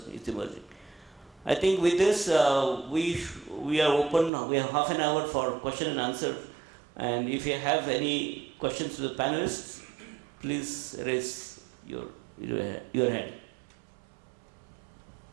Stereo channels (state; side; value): drops out; left; at 4.3 s